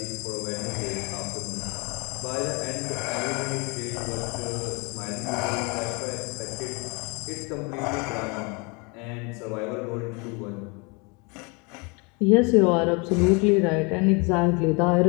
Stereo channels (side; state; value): right; quieter; 30.7 dB